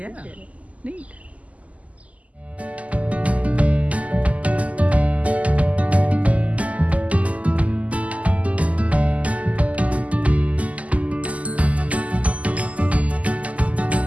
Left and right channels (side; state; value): left; late; 0.070 ms